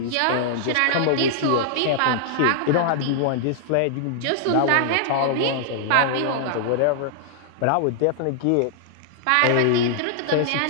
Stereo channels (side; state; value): both; different; correlation -0.01